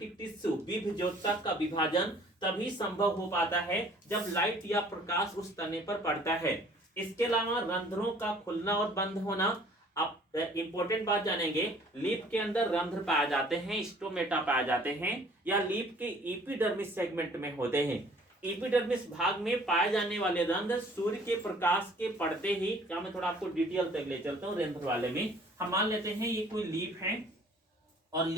टिश्यू विभज्योतक का विभाजन तभी संभव हो पाता है जब लाइट या प्रकाश उस तने पर पड़ता है। इसके अलावा रंध्रों का खुलना और बंद होना। अब इंपॉर्टेंट बात जानेंगे, लीफ के अंदर रंध्र पाए जाते हैं, स्टोमेटा पाए जाते हैं, या लीफ के एपिडर्मिस सेगमेंट में होते हैं। एपिडर्मिस भाग में पाए जाने वाले रंध्र सूर्य के प्रकाश के पड़ते ही, क्या मैं थोड़ा आपको डिटेल तक ले चलता हूँ रंध्र वाले में। हम मान लेते हैं ये कोई लीफ है और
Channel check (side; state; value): both; normal; correlation 0.55